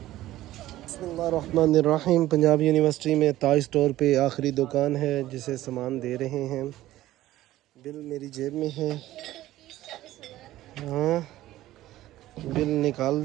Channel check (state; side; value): quieter; left; 15.1 dB